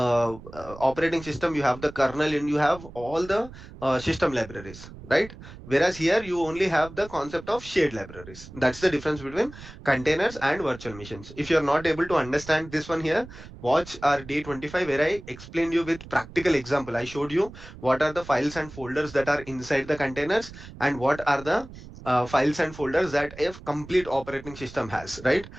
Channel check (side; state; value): right; noise; rumble, 16 dB below the sound